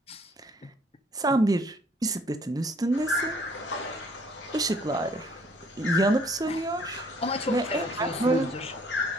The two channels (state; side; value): normal; both; correlation 0.61